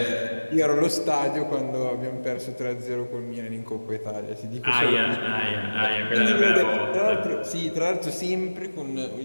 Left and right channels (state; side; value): inverted; both; correlation -1.00